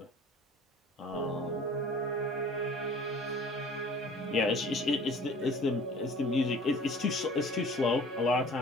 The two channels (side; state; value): both; normal; correlation 0.46